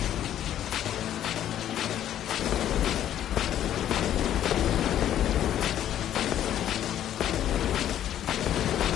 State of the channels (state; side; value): quieter; right; 11.2 dB